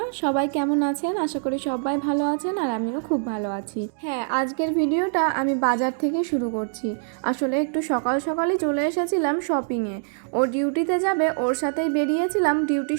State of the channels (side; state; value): left; silent; digital silence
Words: সবাই কেমন আছেন? আশা করি সবাই ভালো আছেন আর আমিও খুব ভালো আছি। হ্যাঁ, আজকের ভিডিওটা আমি বাজার থেকে শুরু করছি। আসলে একটু সকাল সকালই চলে এসেছিলাম শপিংয়ে। ও ডিউটিতে যাবে, ওর সাথেই বেরিয়েছিলাম, ডিউটি